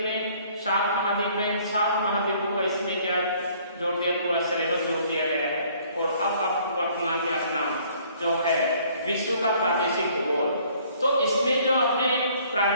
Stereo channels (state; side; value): inverted; both; correlation -0.59